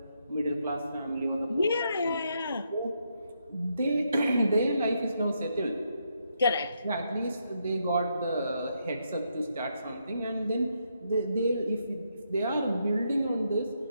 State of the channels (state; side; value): inverted; both; correlation -0.79